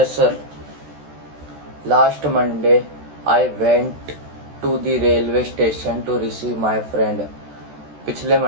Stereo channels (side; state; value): left; late; 14 ms